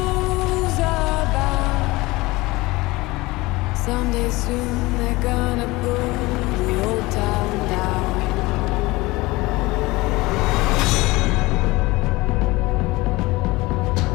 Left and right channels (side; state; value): right; quieter; 21.3 dB